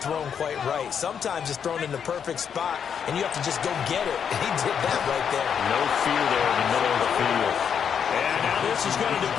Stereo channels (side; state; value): right; quieter; 7.6 dB